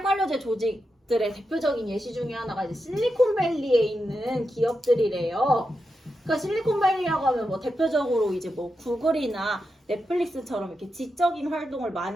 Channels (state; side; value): normal; both; correlation 0.88